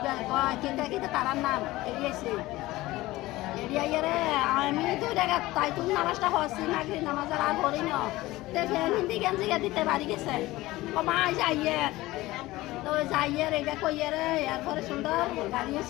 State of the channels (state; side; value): quieter; right; 18.4 dB